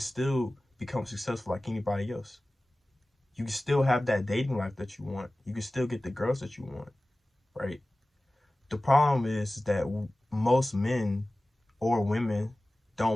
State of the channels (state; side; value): normal; both; correlation 0.97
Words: become successful like anybody else. You can still have that dating life that you want. You can still get the girls that you want, right? The problem is that most men or women